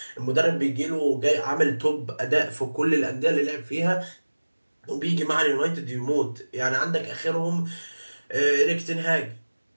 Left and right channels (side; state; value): both; inverted; correlation -1.00